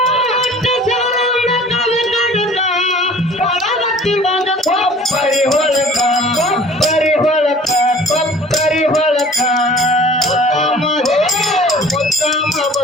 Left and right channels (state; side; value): normal; both; correlation 0.47